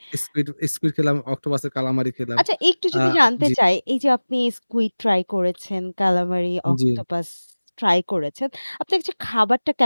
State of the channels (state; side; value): inverted; both; correlation -1.00